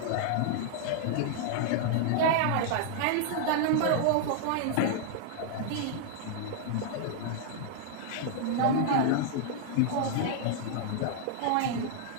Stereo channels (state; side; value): different; both; correlation -0.01